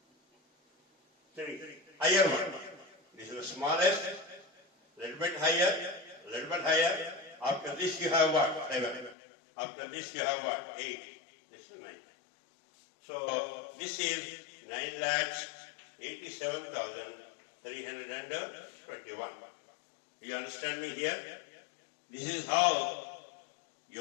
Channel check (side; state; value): right; drops out; at 9.2 s